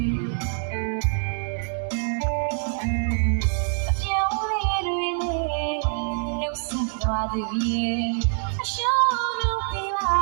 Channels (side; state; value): left; silent; 62 dB below the other